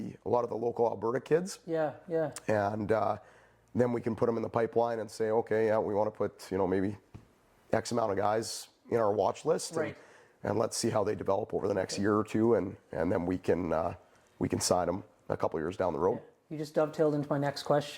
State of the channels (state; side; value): identical; both; correlation 1.00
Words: local Alberta kids. And then we can put them in the pipeline and say, okay, we want to put maybe X amount of guys in our watch list, and let's see how they develop over the next year or two, and then we can sign them a couple years down the road. You just dovetailed into my next